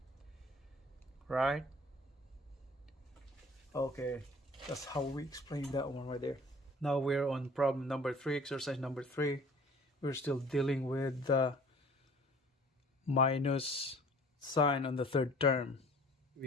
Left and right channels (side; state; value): both; normal; correlation 0.49